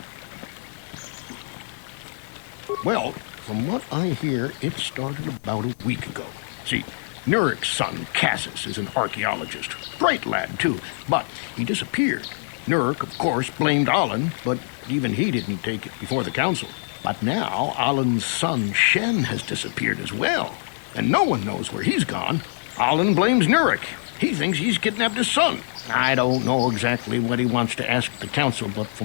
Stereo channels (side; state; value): right; silent; digital silence